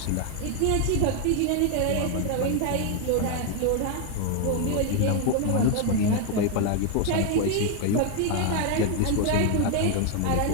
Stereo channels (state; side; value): different; both; correlation 0.00